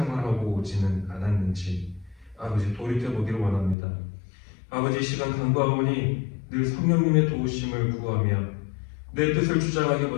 오지는 않았는지 아버지 돌이켜보기를 원합니다. 아버지, 이 시간 간구하오니 늘 성령님의 도우심을 구하며 내 뜻을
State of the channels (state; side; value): drops out; right; at 3.8 s